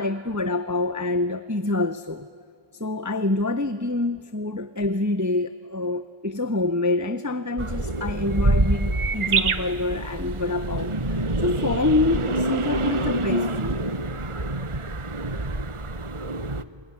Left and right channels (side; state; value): left; late; 1.4 ms